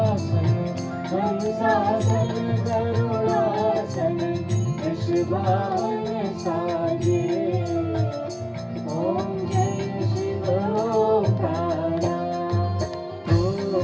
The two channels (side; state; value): both; identical; correlation 1.00